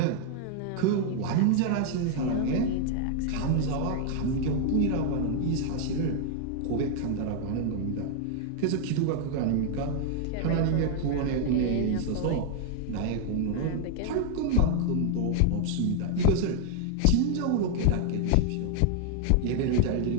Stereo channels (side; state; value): both; different; correlation 0.00